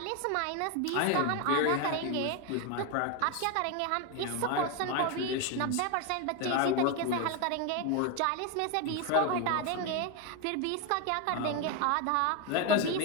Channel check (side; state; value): both; different; correlation 0.02